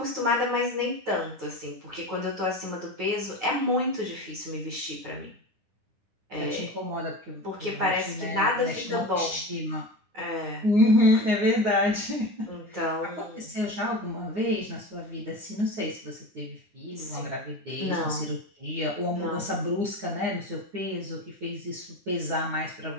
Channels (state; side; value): late; left; 9.9 ms